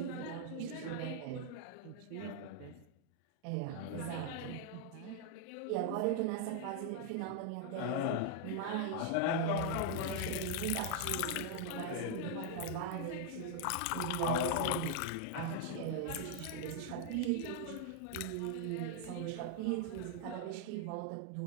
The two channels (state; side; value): different; both; correlation 0.00